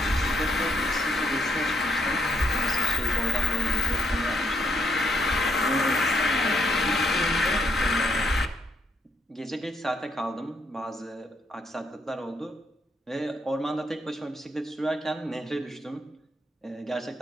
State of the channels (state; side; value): normal; both; correlation 0.74